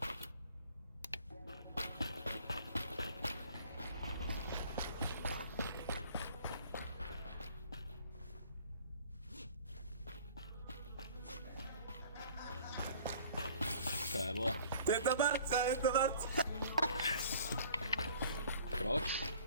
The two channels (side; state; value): both; inverted; correlation -0.51